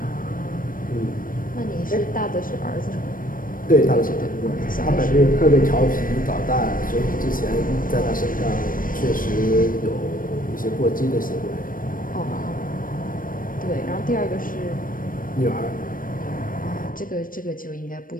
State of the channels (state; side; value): late; right; 0.40 ms